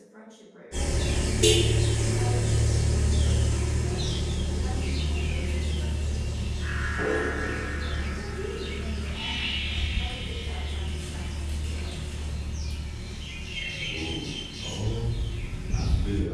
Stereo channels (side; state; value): both; identical; correlation 1.00